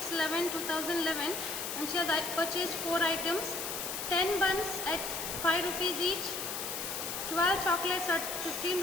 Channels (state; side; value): noise; left; hiss, 4 dB below the sound